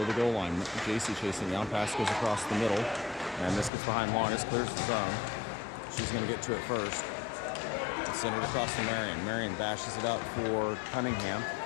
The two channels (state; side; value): drops out; right; at 3.7 s